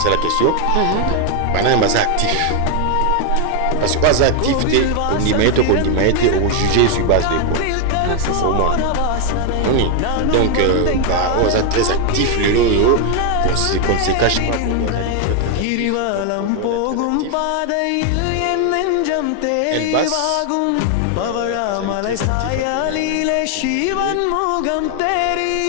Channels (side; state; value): both; different; correlation 0.01